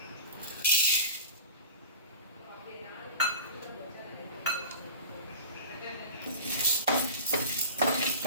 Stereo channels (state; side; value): inverted; both; correlation -0.36